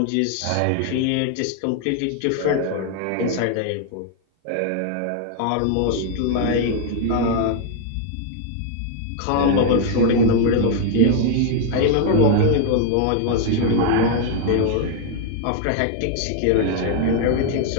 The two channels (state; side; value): different; both; correlation 0.00